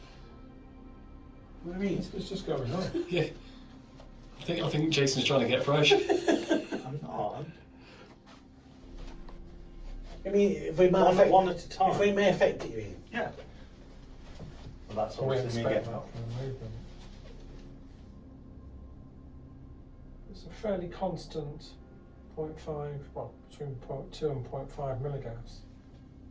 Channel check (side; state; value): both; identical; correlation 1.00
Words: what do you mean? It's just going on. Yeah. I think Jason's trying to get fresh. I'm not. I mean, if we might One, affect, one at a time. if we may affect it, you mean? Yeah. Well, that's We obviously me expect getting that from the movement. It's a fairly constant 0.5, well, between 0.2 and 0.5 milligauss.